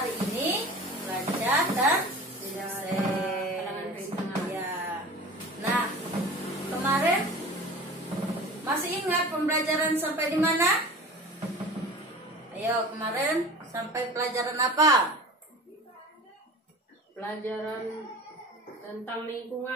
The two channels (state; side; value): normal; both; correlation 0.37